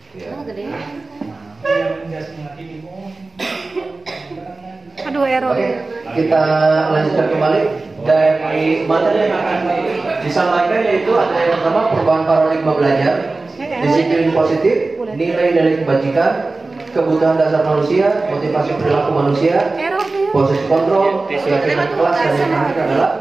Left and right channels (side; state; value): left; quieter; 3.4 dB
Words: Ya. Aduh error. Oke, kita lanjutkan kembali dari materi yang akan disampaikan, yaitu ada yang pertama perubahan paradigma belajar, disiplin positif, nilai dari kebajikan, kebutuhan dasar manusia, motivasi perilaku manusia, proses kontrol, keyakinan kelas, dan yang terakhir adalah